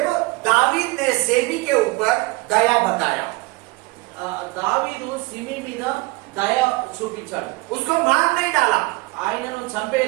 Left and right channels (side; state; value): left; quieter; 24.0 dB